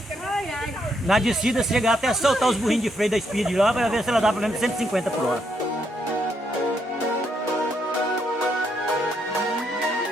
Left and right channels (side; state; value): both; normal; correlation 0.76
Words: Na descida, chegar até soltar os burrinhos de freio da Speed lá pra ver se ela dá pelo menos 150 por hora.